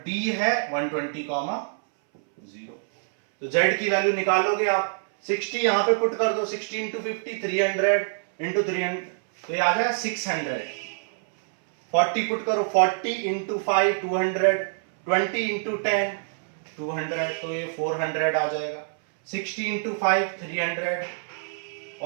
डी है 120,0। तो जेड की वैल्यू निकालोगे आप, 60 यहां पे पुट कर दो, 60 इंटू 50 300 इंटू 300, तो ये आ जाएगा 600। 40 पुट करो, 40 इंटू 5 200, 20 इंटू 10 200, तो ये 400 आ जाएगा। 60 इंटू 5 300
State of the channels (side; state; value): left; silent; 61 dB below the other